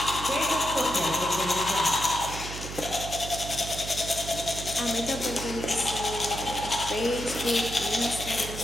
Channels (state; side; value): noise; right; hum, 9 dB below the sound